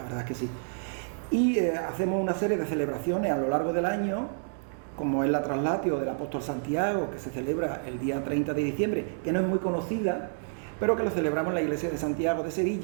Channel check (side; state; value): left; silent; digital silence